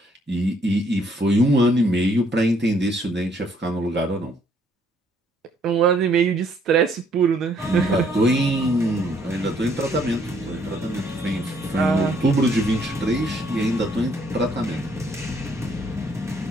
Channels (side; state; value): both; normal; correlation 0.66